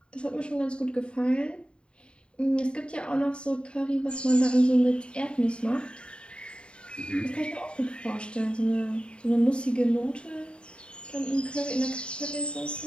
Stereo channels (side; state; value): right; late; 0.054 ms